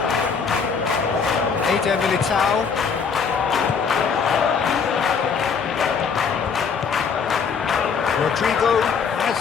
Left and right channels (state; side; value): quieter; right; 5.9 dB